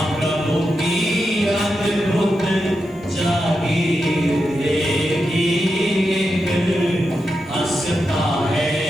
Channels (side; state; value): both; normal; correlation 0.87